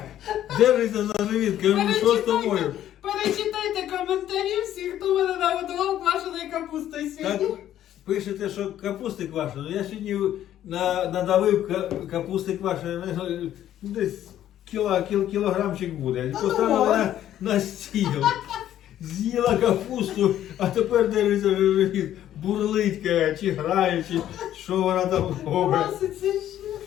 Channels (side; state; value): right; quieter; 11.8 dB